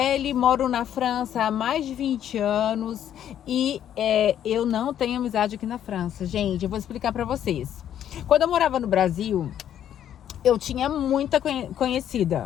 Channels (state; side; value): quieter; right; 10.3 dB